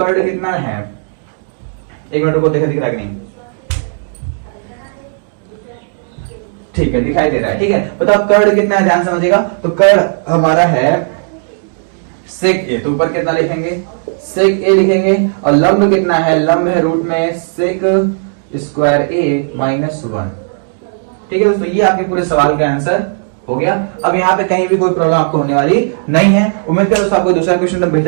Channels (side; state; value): left; silent; digital silence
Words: कितना है, एक मिनट को दिख रहा है कि नहीं, ठीक है दिखाई दे रहा है, ठीक है। बताओ कर्ण कितना है, ध्यान समझिएगा। तो कर्ण हमारा है सेक ए, तो ऊपर कितना लिखेंगे सेक ए लिखेंगे। और लंब कितना है, लंब है रूट में सेक स्क्वायर ए माइनस 1, ठीक है दोस्तों। ये आपके पूरे सवाल का आंसर हो गया। अब यहाँ पे कहीं भी कोई प्रॉब्लम आपको होने वाली नहीं है। उम्मीद करो दोस्तों आपको दूसरा क्वेश्चन